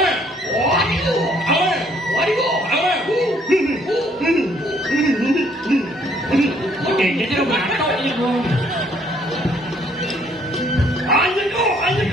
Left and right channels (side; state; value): both; normal; correlation 0.64